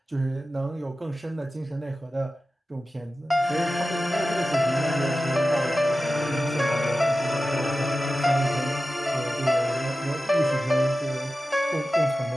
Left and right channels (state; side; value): normal; both; correlation 0.94